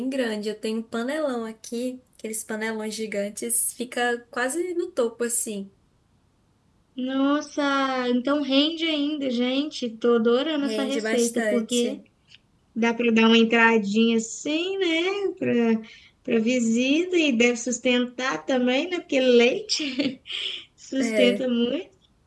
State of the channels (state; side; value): identical; both; correlation 1.00